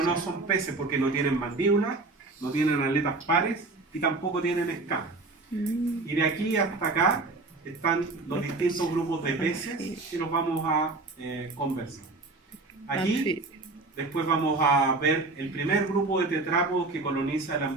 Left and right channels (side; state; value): left; quieter; 3.4 dB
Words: no son peces porque no tienen mandíbula, no tienen aletas pares y tampoco tienen escamas. Y de aquí hasta acá están los distintos grupos de peces que los vamos a conversar. Aquí después vamos a ver el primer grupo de tetrápodos que coloniza el